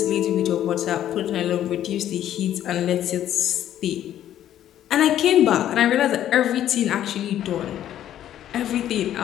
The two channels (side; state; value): right; quieter; 11.5 dB